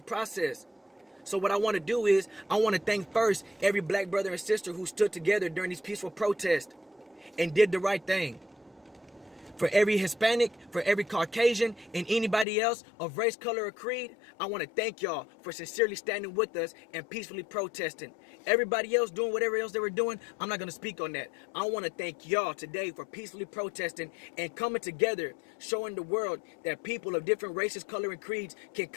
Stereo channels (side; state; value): right; drops out; at 12.5 s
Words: process. So what I want to do is, I want to thank first every black brother and sister who stood together during these peaceful protests and did the right thing. For every Hispanic, for every Caucasian, and anybody else of race, color, or creed, I want to thank y'all for sincerely standing with us and peacefully protesting. Everybody else doing whatever else they were doing, I'm not going to speak on that. I want to thank y'all today for peacefully protesting and coming together, showing the world that people of different races, color, and creeds can